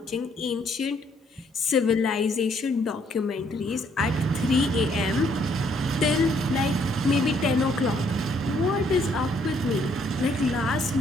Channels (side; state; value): both; normal; correlation 0.67